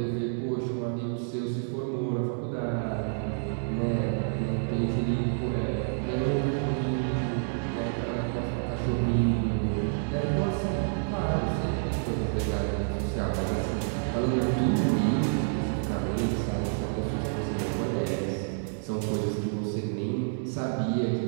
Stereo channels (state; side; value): silent; left; digital silence